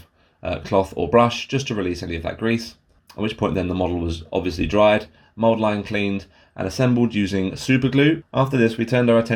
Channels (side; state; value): both; identical; correlation 1.00